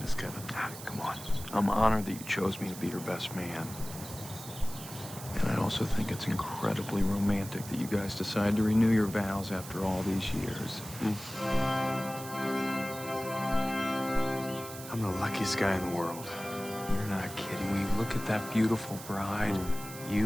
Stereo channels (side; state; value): right; noise; hiss, 13 dB below the sound